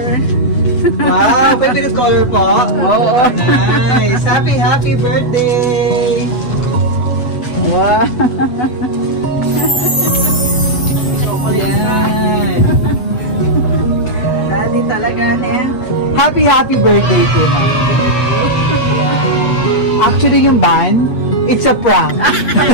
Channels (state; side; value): late; right; 8.1 ms